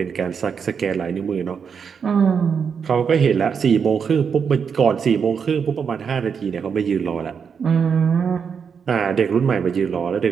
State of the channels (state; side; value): quieter; left; 6.5 dB